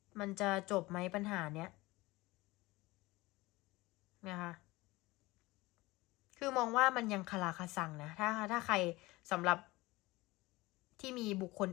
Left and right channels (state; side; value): quieter; right; 20.8 dB